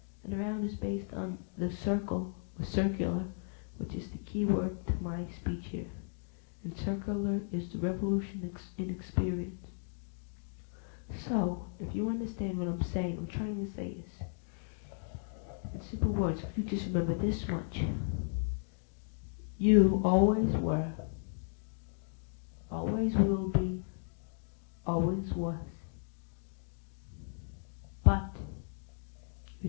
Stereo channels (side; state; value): right; silent; digital silence